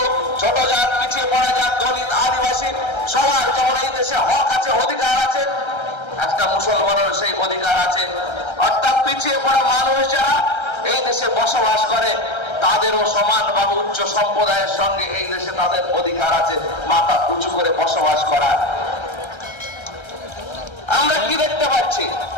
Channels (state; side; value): late; right; 1.3 ms